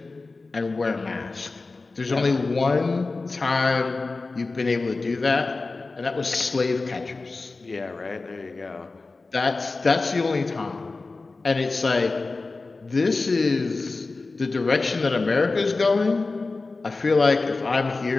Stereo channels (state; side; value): quieter; right; 3.7 dB